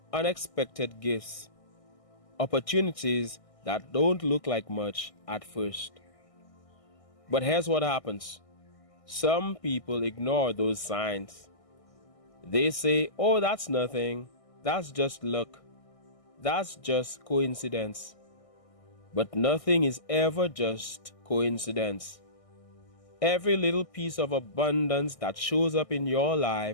unexpected gifts, opportunities that don't look like much at first. But here's what happens. Some people ignore those signs. They say, "Oh, that's nothing. That's just luck. That's just coincidence." But nothing is ever just coincidence. Every little piece of abundance that shows up in your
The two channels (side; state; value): right; late; 1.6 ms